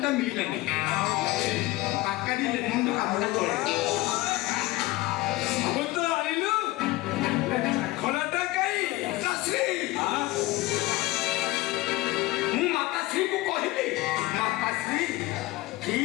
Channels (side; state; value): right; quieter; 19.0 dB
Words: ମିଳିଲାନି ପାକାଡ଼ି ଲେଖନ୍ତୁ କାମଟା ଚଳେ ସବୁ ତ ଆଣିଲୁ ଖୋଲାଟା କାଇଁ ପିତାଶ୍ରୀ ମୁଁ ମାତାଶ୍ରୀଙ୍କୁ କହିଲି ମାତାଶ୍ରୀ